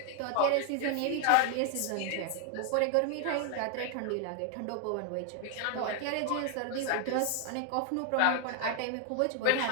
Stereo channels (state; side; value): different; both; correlation 0.00